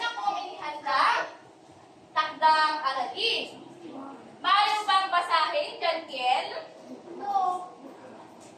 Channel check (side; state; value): both; identical; correlation 1.00